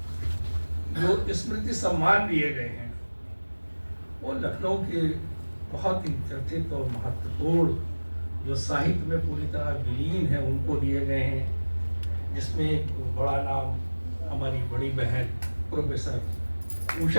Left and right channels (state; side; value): inverted; both; correlation -1.00